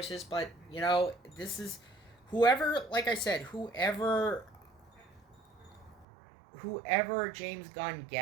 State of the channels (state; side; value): drops out; left; at 6.1 s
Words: but you know, this is whoever, like I said, whoever James Gunn